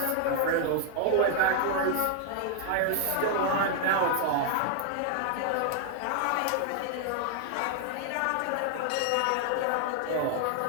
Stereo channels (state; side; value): different; both; correlation 0.00